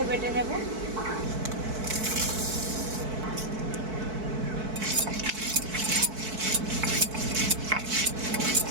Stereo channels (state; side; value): late; left; 4.6 ms